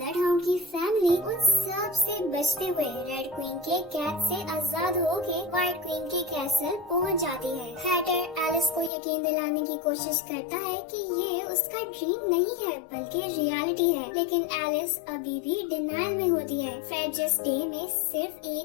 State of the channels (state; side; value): drops out; right; at 8.9 s